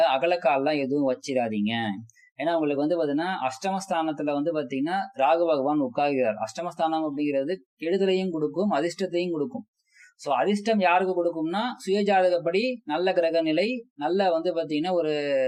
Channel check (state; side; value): identical; both; correlation 1.00